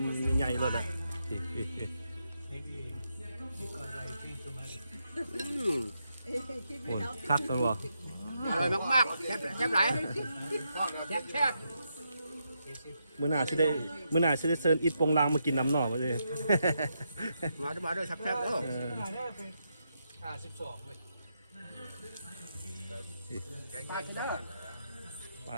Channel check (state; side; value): inverted; both; correlation -0.82